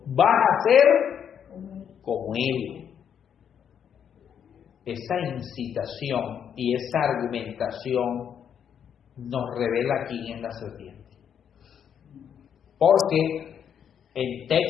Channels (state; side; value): quieter; right; 8.3 dB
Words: vas a ser como Él. Esa incitación y esa argumentación nos revela quién es la serpiente. Porque en